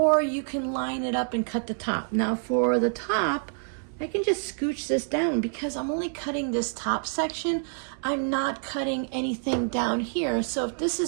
you can line it up and cut the top. Now for the top, I can just scooch this down because I'm only cutting this top section. I'm not cutting anything down here. So if this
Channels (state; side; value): silent; left; 59 dB below the other